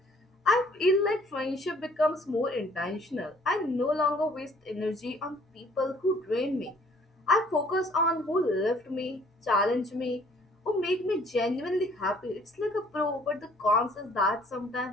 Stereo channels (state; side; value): normal; both; correlation 0.58